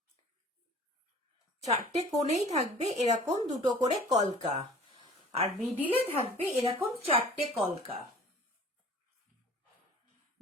চারটে কোণেই থাকবে এরকম দুটো করে কলকা, আর মিডিলে থাকবে এরকম চারটে কলকা,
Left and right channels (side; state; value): both; normal; correlation 0.47